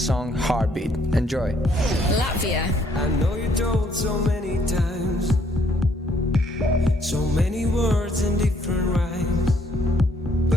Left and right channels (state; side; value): normal; both; correlation 0.67